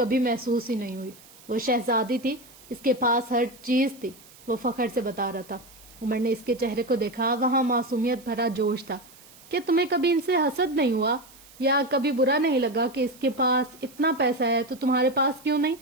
محسوس ہی نہیں ہوئی۔ وہ شہزادی تھی، اس کے پاس ہر چیز تھی، وہ فخر سے بتا رہا تھا۔ عمر نے اس کے چہرے کو دیکھا، وہاں معصومیت بھرا جوش تھا۔ کیا تمہیں کبھی ان سے حسد نہیں ہوا، یا کبھی برا نہیں لگا کہ اس کے پاس اتنا پیسہ ہے تو تمہارے پاس کیوں نہیں؟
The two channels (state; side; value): noise; right; hiss, 23 dB below the sound